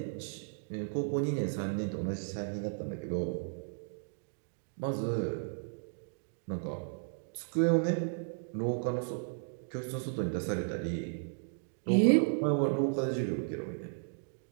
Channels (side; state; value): left; silent; digital silence